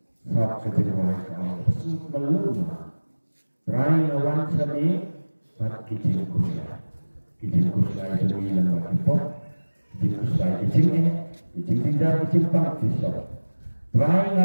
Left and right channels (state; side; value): inverted; both; correlation -1.00